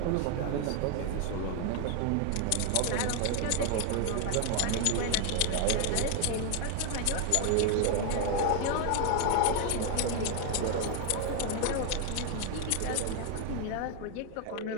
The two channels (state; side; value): different; both; correlation 0.01